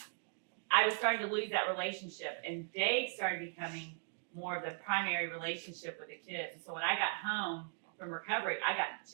I was starting to lose that relationship, and Dave started becoming more of the primary relationship with the kids. So when I got home from recovery, I got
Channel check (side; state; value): left; silent; 52 dB below the other